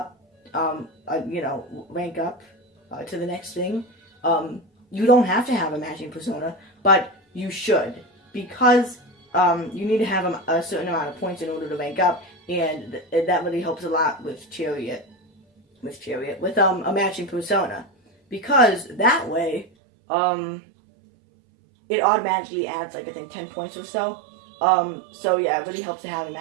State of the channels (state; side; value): drops out; left; at 19.7 s